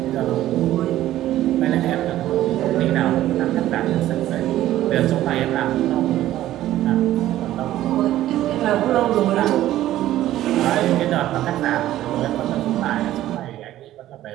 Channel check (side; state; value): left; quieter; 13.8 dB